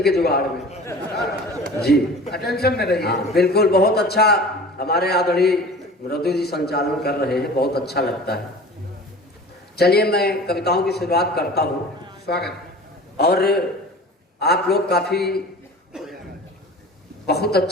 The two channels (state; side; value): normal; both; correlation 0.40